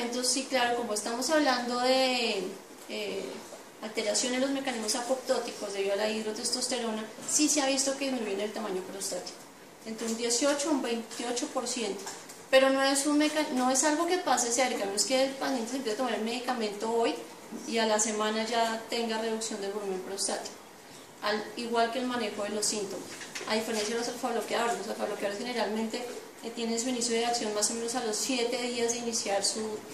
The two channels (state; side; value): identical; both; correlation 1.00